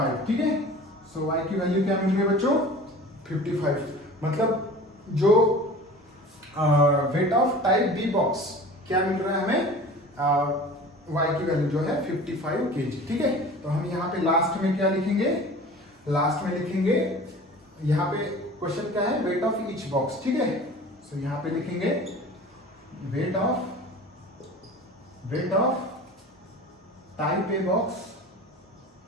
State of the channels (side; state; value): both; normal; correlation 0.40